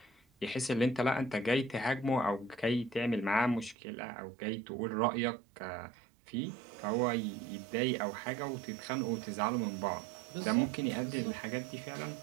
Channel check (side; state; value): left; drops out; at 3.8 s